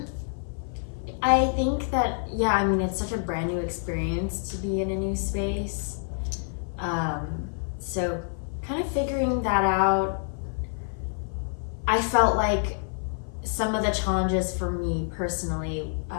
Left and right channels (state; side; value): silent; right; 57 dB below the other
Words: I think that, it's such a brand new experience to be in a new space. So kind of figuring that out, I felt like some of the challenges for me personally